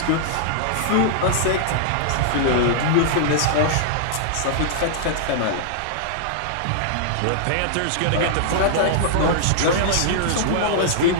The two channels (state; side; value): different; both; correlation -0.01